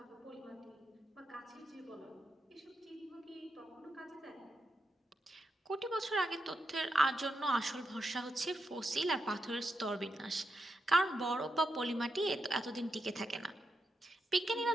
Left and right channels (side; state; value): both; normal; correlation 0.85